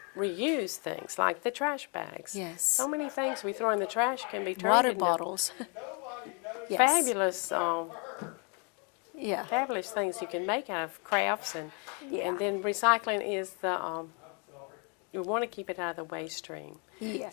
reuse things like the trash bags. Yes. So many things we throw in the trash can be turned Water into bottles. Yes. fabulous. Yeah. Fabulous things you can make out of crafts, and then recycling is you want to keep it out of the waste stream.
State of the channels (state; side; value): quieter; right; 35.5 dB